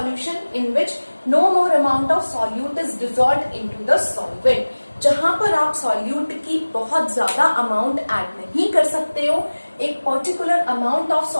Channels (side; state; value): both; inverted; correlation -1.00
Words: In which no more amount of solute is dissolved into the solvent. जहां पर आप सॉल्यूट की बहुत ज्यादा अमाउंट ऐड नहीं कर सकते हो, एक पर्टिकुलर अमाउंट ऑफ